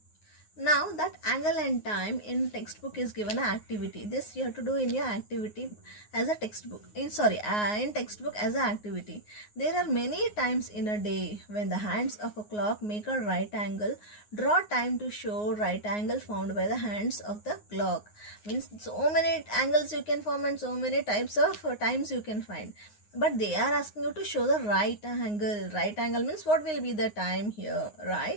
Now, that angle and time in textbook is given an activity. This you have to do in your activity as a textbook. In textbook as an activity. There are many times in a day when the hands of a clock make a right angle. Draw time to show right angle found by the hands of the clock. Means so many angles you can form and so many types of times you can find. But they are asking you to show the right angle. Right angle means what will be the time here,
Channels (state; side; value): late; right; 9.6 ms